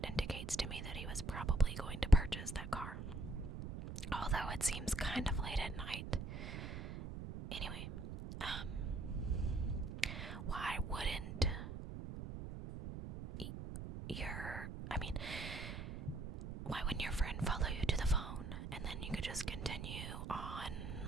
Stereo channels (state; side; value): noise; right; rumble, 7 dB below the sound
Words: indicates to me that he was probably going to purchase that car. Although it seems kind of late at night. Anyway, why wouldn't why wouldn't your friend follow you to the phone and then you could just continue